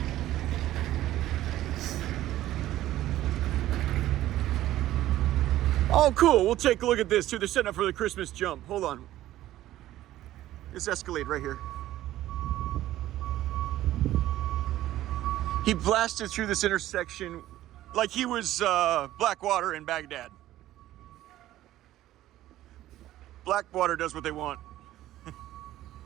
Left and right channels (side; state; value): left; quieter; 14.3 dB